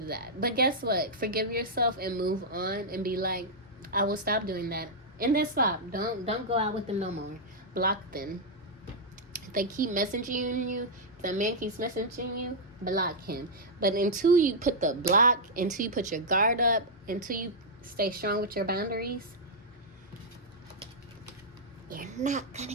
did that. But guess what? Forgive yourself and move on and be like, I will stop doing that. And then stop. Don't go out with them no more. Block them. If they keep messaging you, if the man keeps messaging you, block him. But until you put the block, until you put your guard up, until you stay strong with your boundaries, you're not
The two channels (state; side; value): normal; both; correlation -0.06